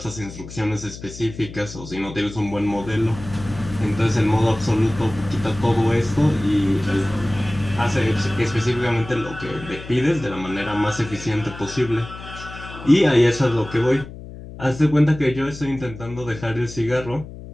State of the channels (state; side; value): noise; left; hum, 14 dB below the sound